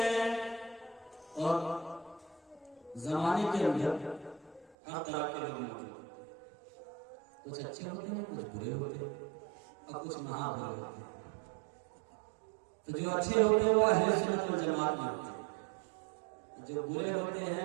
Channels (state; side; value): drops out; left; at 4.8 s